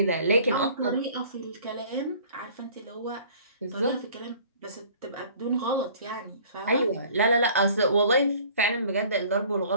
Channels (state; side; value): inverted; both; correlation -0.51